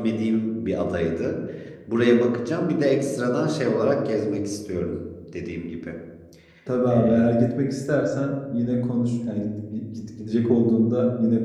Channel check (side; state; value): both; identical; correlation 1.00